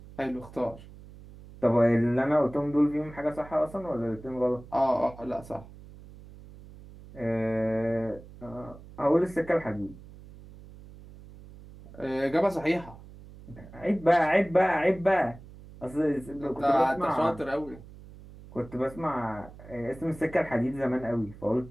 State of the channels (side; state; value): right; noise; hum, 18 dB below the sound